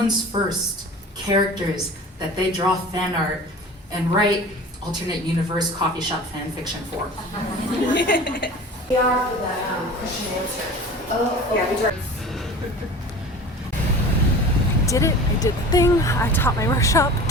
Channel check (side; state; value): both; normal; correlation 0.39